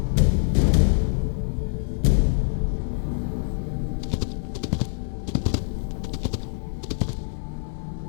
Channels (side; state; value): right; silent; 55 dB below the other